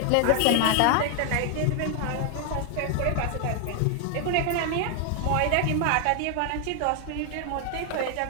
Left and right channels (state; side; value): different; both; correlation 0.00